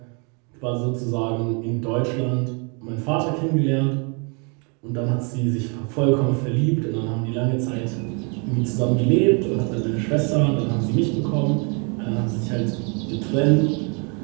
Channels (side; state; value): left; quieter; 35.1 dB